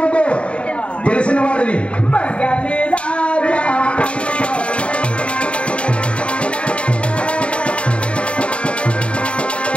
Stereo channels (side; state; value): right; late; 0.060 ms